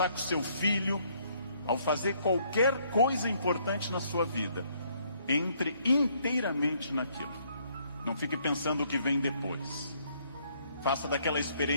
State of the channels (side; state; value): both; inverted; correlation -0.67